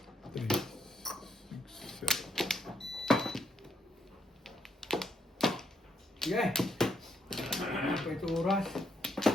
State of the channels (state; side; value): normal; both; correlation 0.75